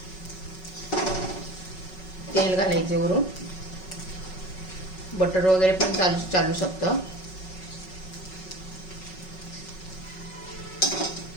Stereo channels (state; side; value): late; right; 5.4 ms